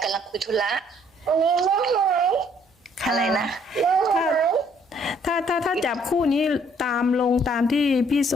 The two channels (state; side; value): normal; both; correlation 0.63